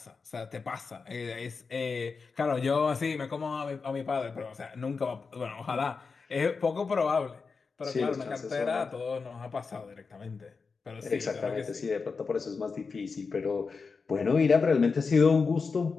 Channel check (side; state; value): right; quieter; 4.8 dB